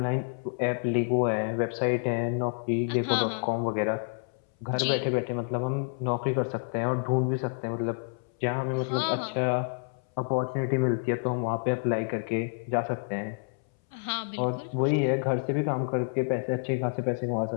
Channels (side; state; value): right; silent; 59 dB below the other